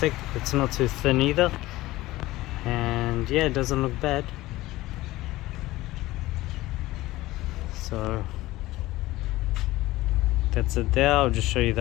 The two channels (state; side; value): quieter; right; 17.7 dB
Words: it's not too thin either, and yeah, it doesn't look bad. So that's it there. I'll just show you